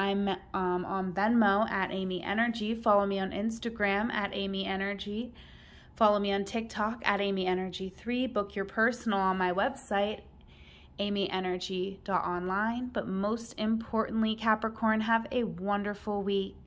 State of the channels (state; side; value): identical; both; correlation 1.00